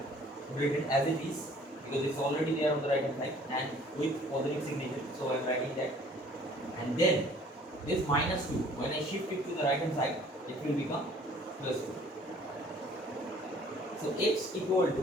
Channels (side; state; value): both; normal; correlation 0.54